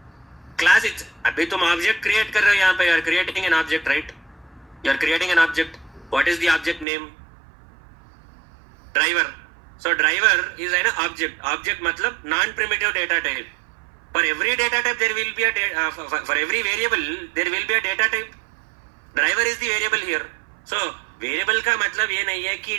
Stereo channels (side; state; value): left; drops out; at 6.9 s